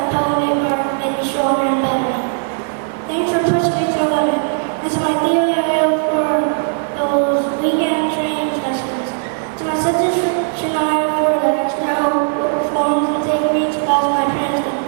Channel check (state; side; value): silent; left; digital silence